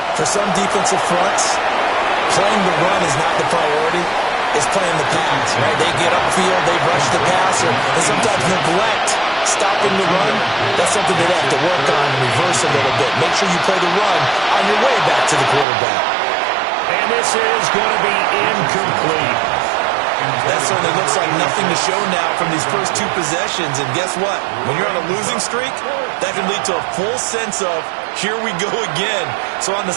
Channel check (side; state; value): left; drops out; at 15.7 s